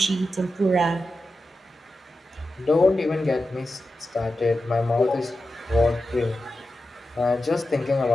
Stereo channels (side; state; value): both; normal; correlation 0.91